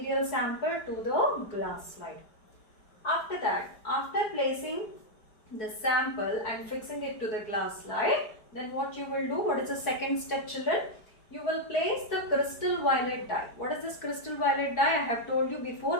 sample to the glass slide. After that, after placing the sample and fixing it to the glass slide, then what you will do, what is the second step, children? You will place the crystal violet dye. What is this crystal violet dye? I have told you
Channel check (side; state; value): right; late; 4.6 ms